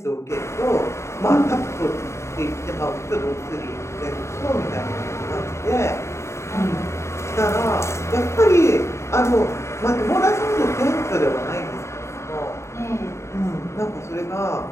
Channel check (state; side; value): late; right; 0.13 ms